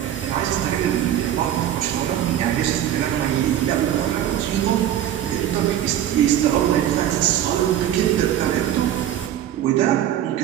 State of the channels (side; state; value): left; quieter; 11.3 dB